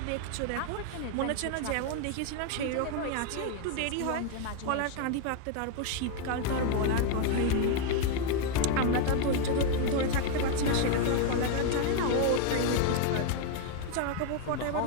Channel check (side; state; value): both; different; correlation 0.01